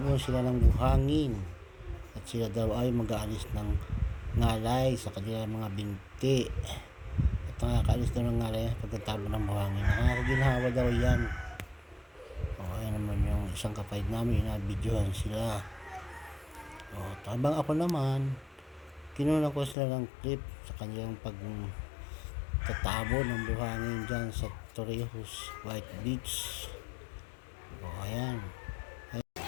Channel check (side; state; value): right; drops out; at 19.8 s